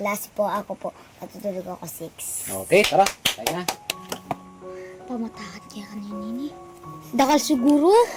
po. Ako po, natutulog ako 6. Okay, tara. Tayo na. Pamatakan kaya kanina ni. Dakal siguro.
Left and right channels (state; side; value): identical; both; correlation 1.00